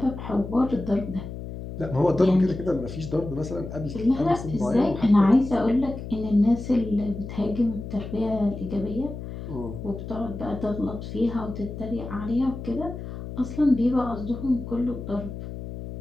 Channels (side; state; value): left; noise; hum, 9 dB below the sound